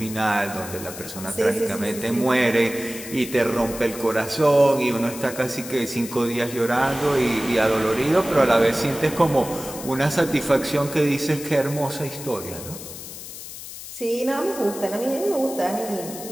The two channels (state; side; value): noise; left; hiss, 12 dB below the sound